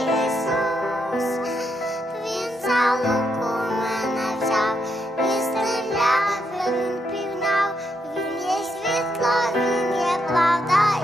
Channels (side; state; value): both; normal; correlation 0.79